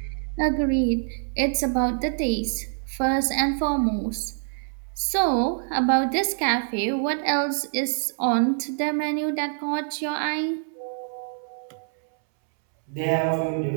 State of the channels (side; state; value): left; silent; 61 dB below the other